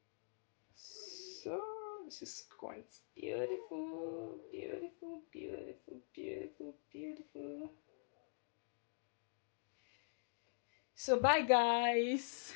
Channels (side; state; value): right; silent; digital silence